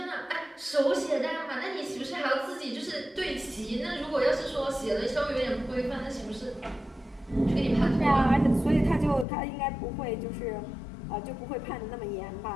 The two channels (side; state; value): right; drops out; at 9.2 s